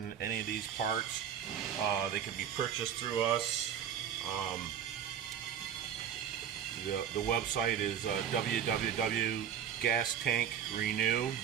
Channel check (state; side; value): quieter; left; 8.9 dB